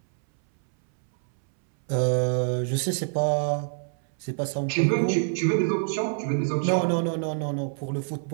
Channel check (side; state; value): left; silent; 61 dB below the other